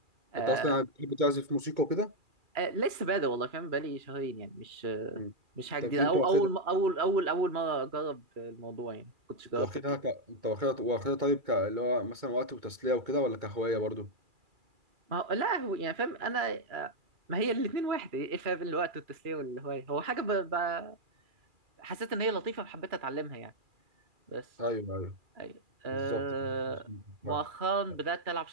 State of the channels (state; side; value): late; left; 2.4 ms